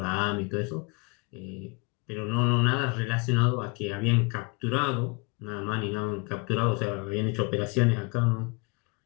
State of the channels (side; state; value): right; quieter; 30.1 dB